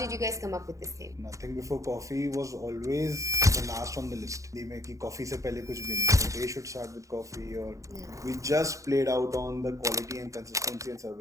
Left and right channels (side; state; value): left; late; 0.15 ms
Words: you guys come up with this name? Nothing Before Coffee was always the last on the list. में कि coffee से पहले कुछ भी नहीं. They should start with coffee, or we just played out on the quality and consistency and